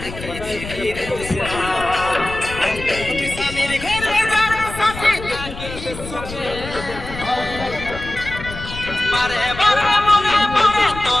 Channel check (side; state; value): left; noise; rumble, 11 dB below the sound